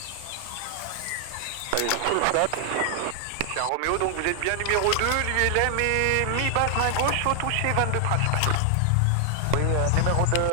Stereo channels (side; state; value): both; different; correlation 0.00